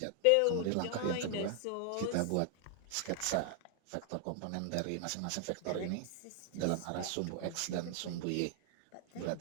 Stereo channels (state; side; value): different; both; correlation 0.00